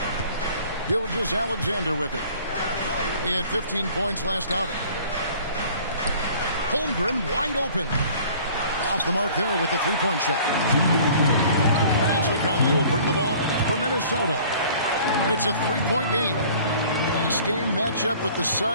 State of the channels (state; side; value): inverted; both; correlation -0.50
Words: Gilgeous-Alexander with it. He had 15 points last outing. Holmgren wide open. Off the mark there with the three-point shot. And so Conley will bring the ball up for Minnesota. It's a three-point game. Last game matchup with the